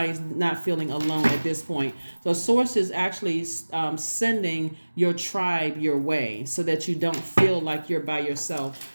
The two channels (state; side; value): inverted; both; correlation -1.00